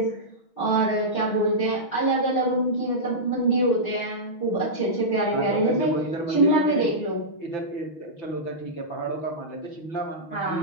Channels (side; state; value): right; late; 6.2 ms